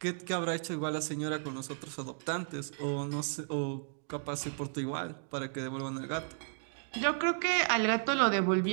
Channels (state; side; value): silent; left; digital silence